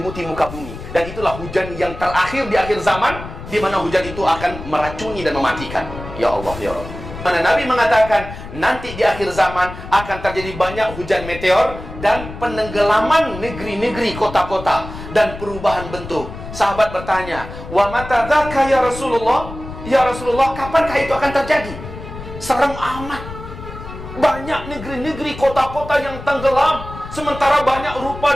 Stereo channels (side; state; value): left; noise; rumble, 12 dB below the sound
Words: muka bumi. Dan itulah hujan yang terakhir di akhir zaman, di mana hujan itu akan meracuni dan mematikan. Ya Allah, ya Allah. Mana Nabi mengatakan nanti di akhir zaman akan terjadi banyak hujan meteor dan penenggelaman negeri-negeri, kota-kota, dan perubahan bentuk. Sahabat bertanya, "Wa mata dzaka ya Rasulullah?" Ya Rasulullah, kapankah itu akan terjadi? Serem amat. Banyak negeri-negeri, kota-kota yang tenggelam, sementara banyak rupa